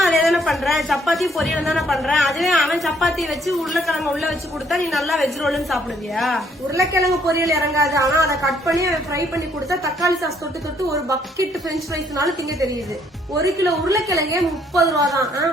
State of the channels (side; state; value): both; normal; correlation 0.67